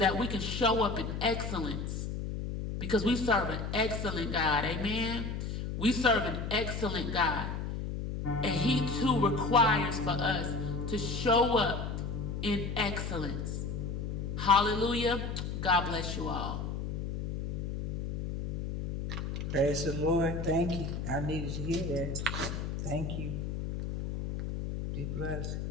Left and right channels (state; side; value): noise; left; hum, 4 dB below the sound